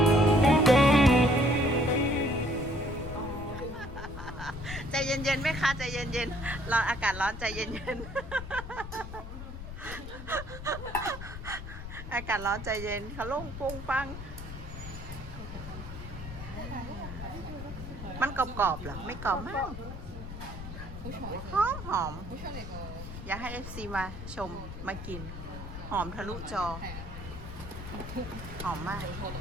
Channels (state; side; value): noise; left; rumble, 9 dB below the sound